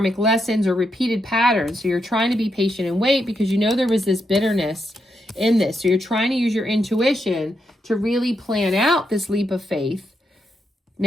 lessons or repeated patterns. So you're trying to be patient and wait because you know there was this bitterness in this. So you're trying to use your intuition to really plan out this leap of faith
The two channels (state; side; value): normal; both; correlation 0.82